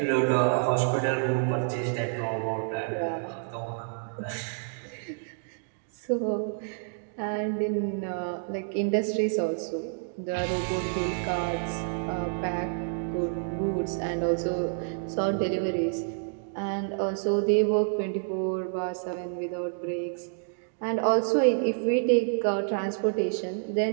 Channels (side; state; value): left; silent; digital silence